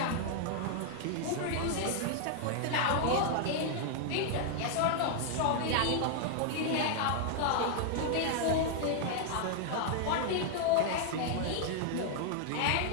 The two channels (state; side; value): different; both; correlation 0.00